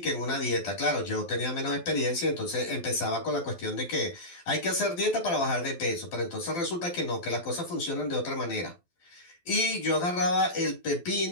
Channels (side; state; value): right; late; 12 ms